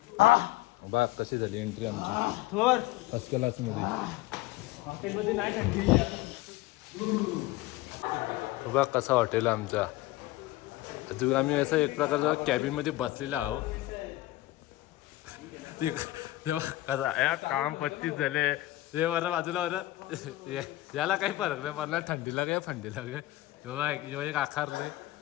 बघ कशी झाली एंट्री आमची थोर फर्स्ट क्लास मध्ये. हॉटेलमध्ये नाही थंडी. बघ कसा हॉटेल आमचा. अजून आम्ही असं एक प्रकारचा कॅबिन मध्ये बसलेला आहो. तेव्हा कसा या काम पत्तीच झाले ते बरं बाजूला बरं याला काही फरक नाही पडणार थंडीला काय थंडीला काय. यो एक आकारले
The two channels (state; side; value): quieter; right; 17.5 dB